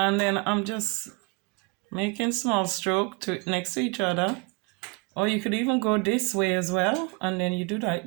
then I'm just making small stroke to next to each other. Or you could even go this way as well, and then you do like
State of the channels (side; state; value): left; quieter; 29.6 dB